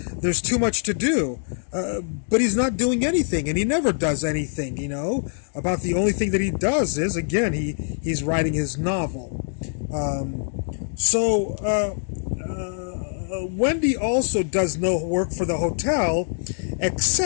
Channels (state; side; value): silent; right; digital silence